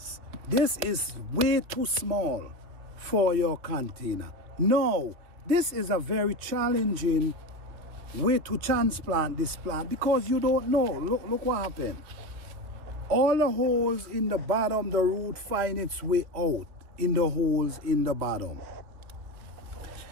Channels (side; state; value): left; late; 2.6 ms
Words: This is way too small for your container. No, this is a very challenging way to transplant this plant, because you don't know. Look what happened. All the holes in the bottom, the root find its way out in the holes in the bottom.